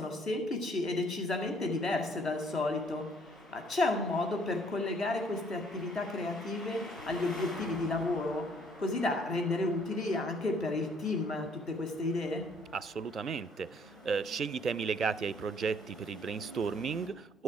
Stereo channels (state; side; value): normal; both; correlation 0.62